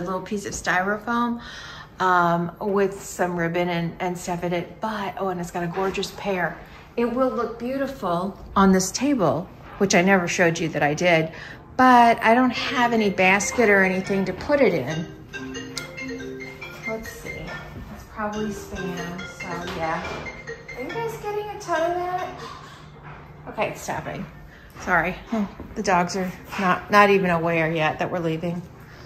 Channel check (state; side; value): identical; both; correlation 1.00